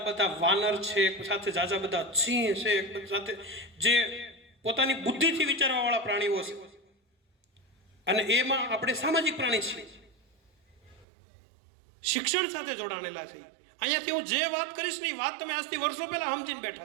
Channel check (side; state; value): left; drops out; at 11.1 s